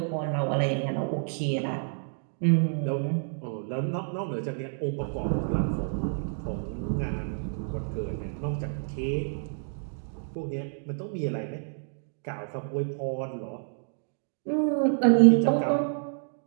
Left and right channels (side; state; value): left; silent; digital silence